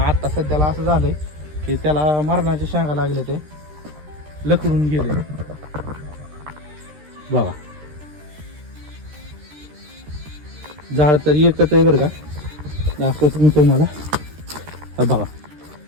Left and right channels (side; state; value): left; late; 13 ms